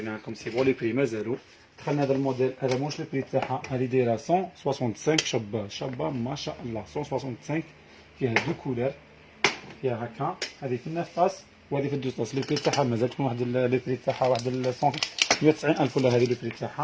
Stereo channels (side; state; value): both; identical; correlation 1.00